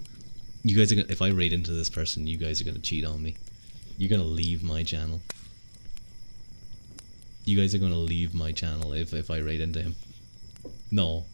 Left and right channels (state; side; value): inverted; both; correlation -1.00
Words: You guys are gonna, if I raid into this person, you guys are gonna cheat on me. You're gonna leave my channel. You guys are gonna leave my channel if I raid into him. No,